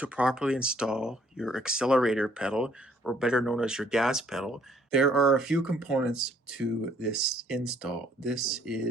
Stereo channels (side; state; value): both; normal; correlation 0.64